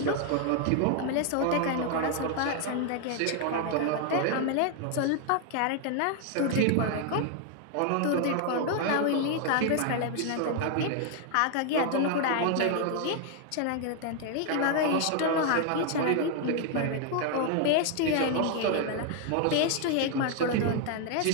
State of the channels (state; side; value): different; both; correlation 0.00